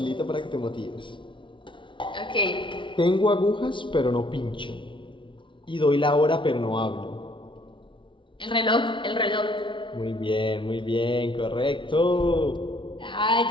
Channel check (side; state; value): right; late; 0.24 ms